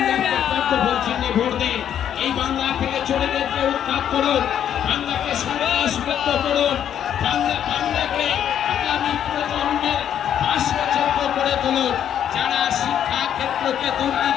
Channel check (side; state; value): right; quieter; 9.7 dB